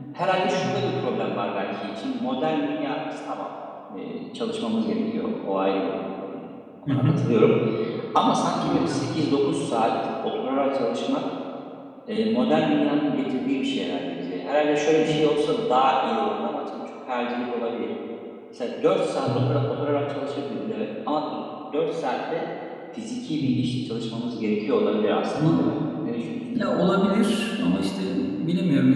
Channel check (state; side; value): identical; both; correlation 1.00